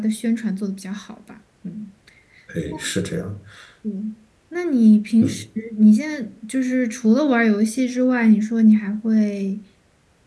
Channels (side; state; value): both; identical; correlation 1.00